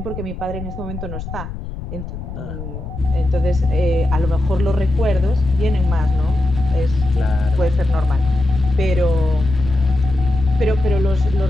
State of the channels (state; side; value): noise; left; rumble, 9 dB below the sound